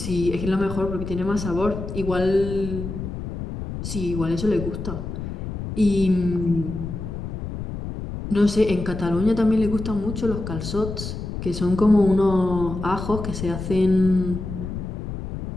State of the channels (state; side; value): noise; left; rumble, 7 dB below the sound